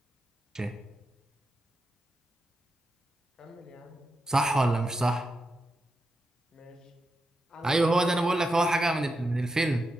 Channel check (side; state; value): both; normal; correlation 0.87